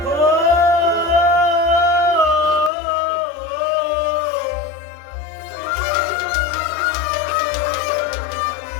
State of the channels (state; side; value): drops out; right; at 2.7 s